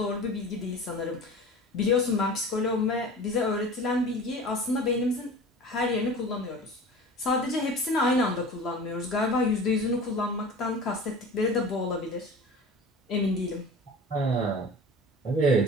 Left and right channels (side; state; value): both; normal; correlation 0.38